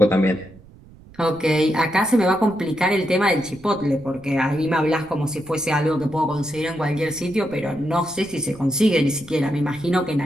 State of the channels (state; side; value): noise; right; rumble, 22 dB below the sound